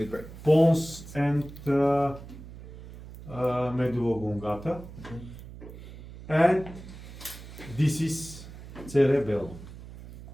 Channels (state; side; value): noise; right; hum, 15 dB below the sound